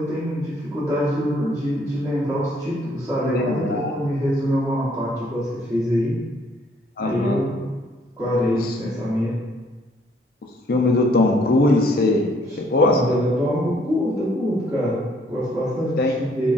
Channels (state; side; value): normal; both; correlation 0.64